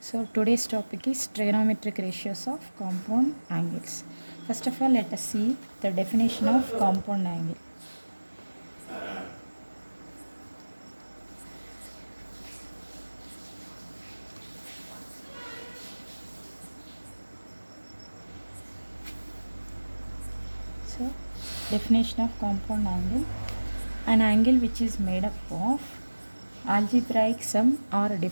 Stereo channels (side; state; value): both; inverted; correlation -1.00